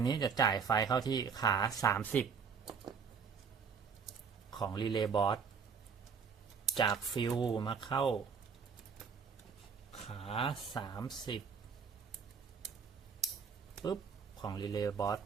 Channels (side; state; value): left; quieter; 6.0 dB